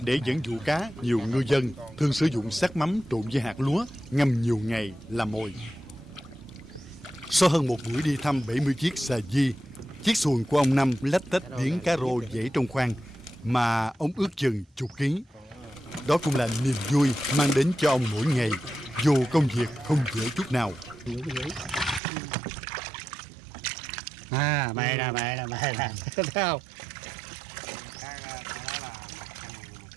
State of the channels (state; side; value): drops out; left; at 22.0 s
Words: Để dẫn dụ cá, nhiều ngư dân thường sử dụng xác mắm trộn với hạt lúa ngâm nhiều ngày làm mồi. Sau hơn một buổi đi thăm 70 chiếc xà di, chiếc xuồng của ông Năm lách tách điếng cá rô dễ trong khoang mà ông ước chừng chục ký. Đó cũng là niềm vui mang đến cho ông mỗi ngày, dù công việc không dễ chút nào. Mày nè, thấy không?